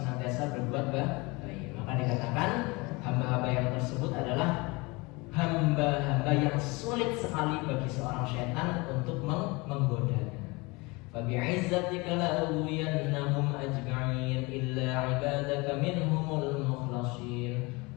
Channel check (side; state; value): right; quieter; 25.5 dB